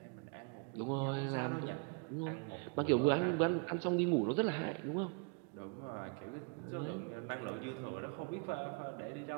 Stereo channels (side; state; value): left; quieter; 37.0 dB